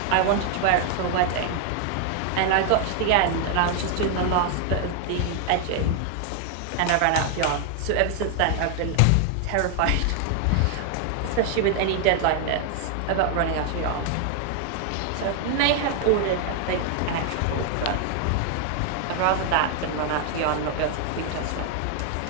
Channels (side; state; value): both; different; correlation 0.00